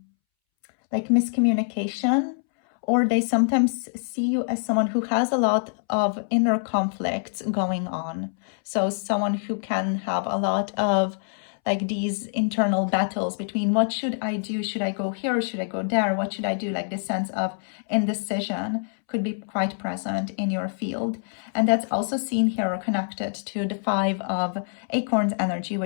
miscommunication, or they sometimes see you as someone who has a lot of inner conflicts going on. So someone who can have a lot of these internal battles between what should I do? Should I go here or should I go there? What should I do? This sense of indecision could be quite present in your field. And that's also seen here or connected to the 5 of acorns energy,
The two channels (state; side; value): silent; right; 62 dB below the other